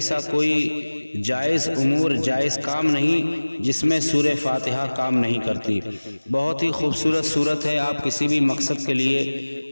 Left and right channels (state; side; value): inverted; both; correlation -1.00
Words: کوئی جائز امور، جائز کام نہیں جس میں سورہ فاتحہ کام نہیں کرتی۔ بہت ہی خوبصورت سورت ہے، آپ کسی بھی مقصد کے